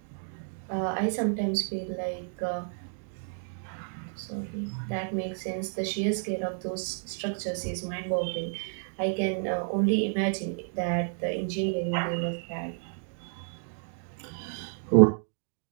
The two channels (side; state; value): left; silent; 57 dB below the other